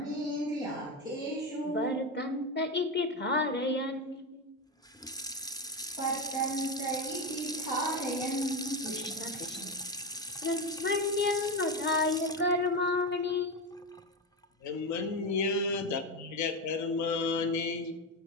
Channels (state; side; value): normal; both; correlation 0.15